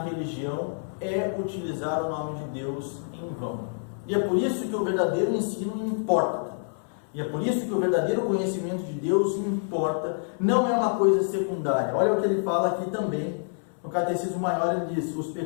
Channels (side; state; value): right; silent; 60 dB below the other